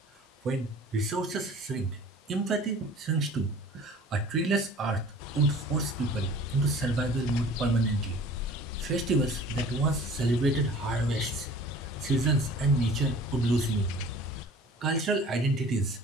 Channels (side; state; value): both; normal; correlation 0.46